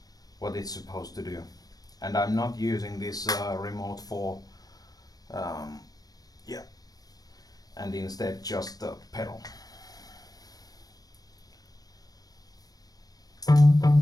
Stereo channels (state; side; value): late; right; 0.18 ms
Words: what it's supposed to do, and I'm not using this remote 4, yeah, and instead just the pedal.